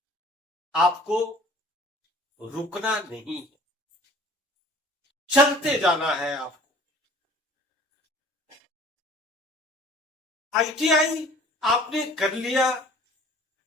आपको रुकना नहीं है, चलते जाना है आपको। आईटीआई आपने कर लिया,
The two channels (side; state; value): both; normal; correlation 0.49